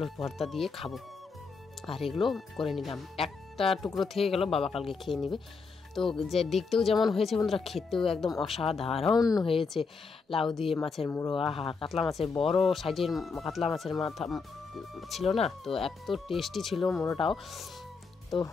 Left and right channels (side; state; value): right; quieter; 4.7 dB